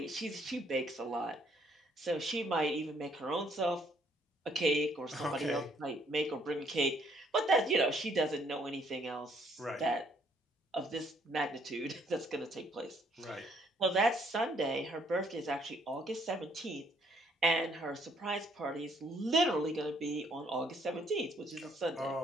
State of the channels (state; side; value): normal; both; correlation 0.66